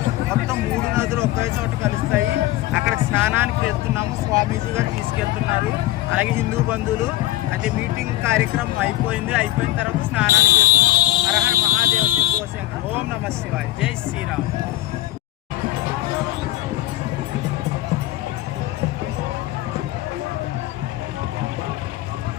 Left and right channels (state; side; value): quieter; right; 16.1 dB